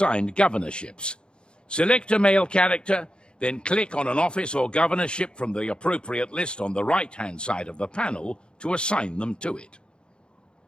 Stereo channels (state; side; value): late; right; 0.052 ms